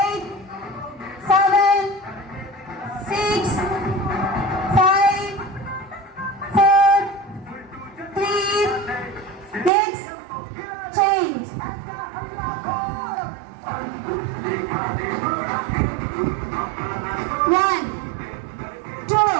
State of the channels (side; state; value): left; drops out; at 9.7 s